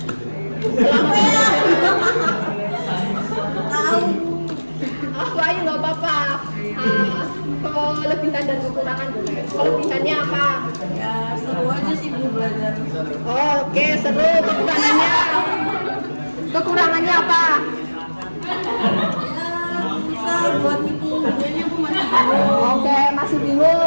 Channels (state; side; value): inverted; both; correlation -1.00